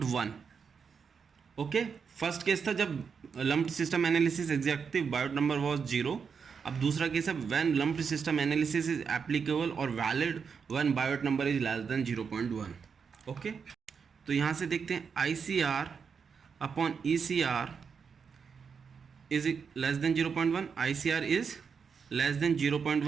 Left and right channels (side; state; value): left; quieter; 6.1 dB